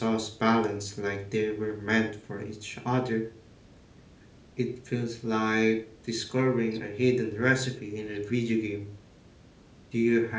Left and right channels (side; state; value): both; identical; correlation 1.00